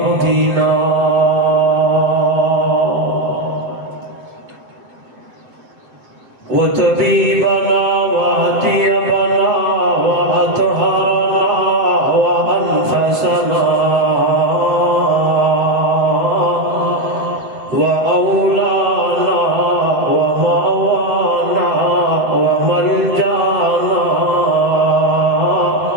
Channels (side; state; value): left; late; 7.8 ms